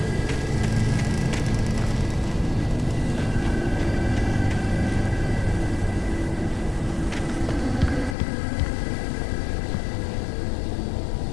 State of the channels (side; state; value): right; drops out; at 8.2 s